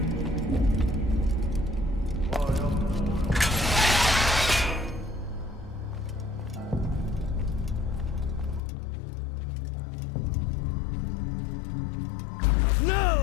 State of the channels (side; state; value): right; drops out; at 8.6 s